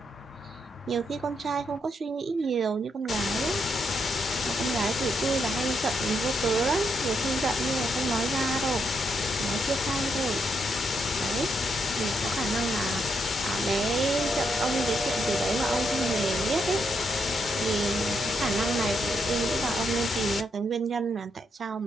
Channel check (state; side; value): normal; both; correlation 0.79